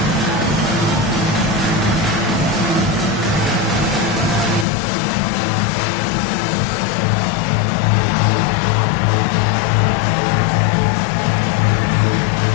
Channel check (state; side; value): drops out; right; at 4.7 s